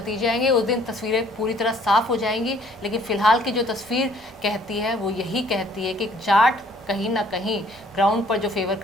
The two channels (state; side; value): normal; both; correlation 0.59